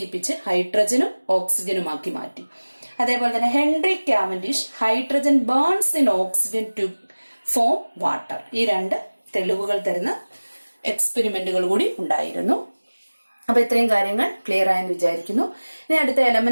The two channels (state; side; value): inverted; both; correlation -1.00